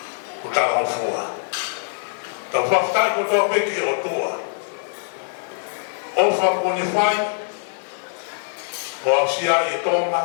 ko tala o fua. Ta whaftai ko toa peke o tua. O whako ne whai, o ausia e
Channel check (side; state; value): right; silent; 63 dB below the other